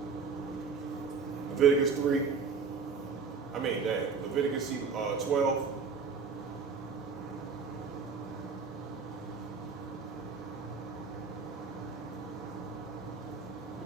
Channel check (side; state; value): left; quieter; 5.3 dB